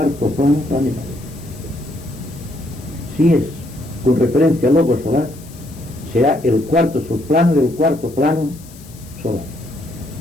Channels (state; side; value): noise; left; hiss, 22 dB below the sound